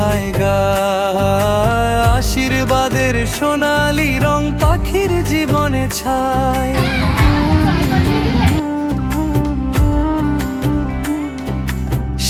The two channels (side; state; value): both; identical; correlation 1.00